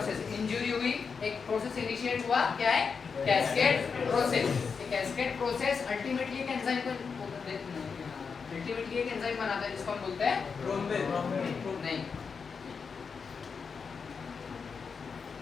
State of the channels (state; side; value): quieter; right; 5.6 dB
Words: इंजरी हुई, एक प्रोसेस इनिशिएट हुआ, क्या है? Cascade process. Cascade process ultimately एक एंजाइम को अल्टीमेटली एक एंजाइम बनाता है जिसको हम बोलते हैं थ्रोम्बिन। नहीं,